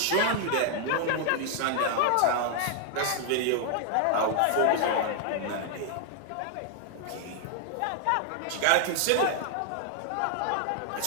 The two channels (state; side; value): different; both; correlation 0.00